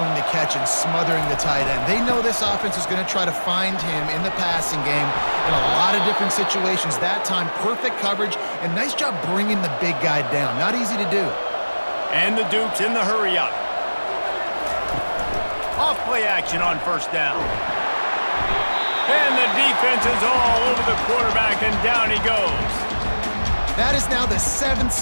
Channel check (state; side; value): inverted; both; correlation -1.00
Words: the catch and smothering the tight end. They know this offense is going to try to find him in the passing game in a lot of different situations. That time, perfect coverage, and nice job bringing the big guy down. Not easy to do. And the Dukes in the hurry-up. Off-play action on first down. And the defense is all over the quarterback, and down he goes. That is now the 7th